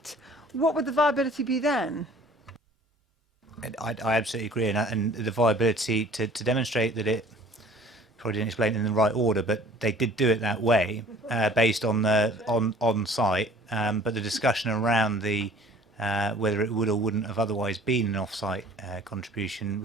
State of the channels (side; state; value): both; normal; correlation 0.50